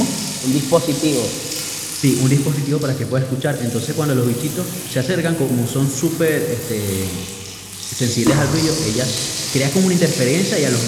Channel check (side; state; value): both; identical; correlation 1.00